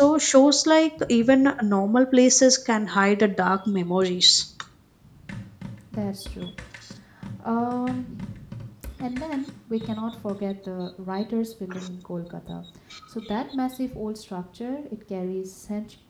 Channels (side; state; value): both; identical; correlation 1.00